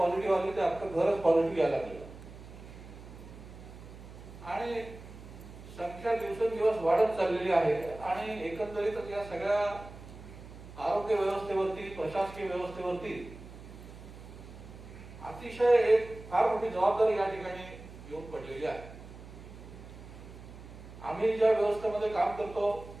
आली तर अख्खं घरच पॉझिटिव्ह यायला लागलं आणि संख्या दिवसेंदिवस वाढत चाललेली आहे. आणि एकंदरीतच या सगळ्या आरोग्य व्यवस्थेवरती, प्रशासकीय व्यवस्थेवरती अतिशय एक फार मोठी जबाबदारी या ठिकाणी येऊन पडलेली आहे. आम्ही ज्या व्यवस्थेमध्ये काम करतो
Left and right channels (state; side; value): noise; right; hum, 16 dB below the sound